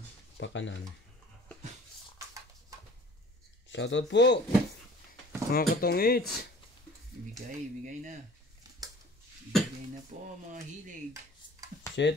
Pakanan. Shoutout po mga katongits. Bigay na. Bigay na po mga hilig.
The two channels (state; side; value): normal; both; correlation 0.48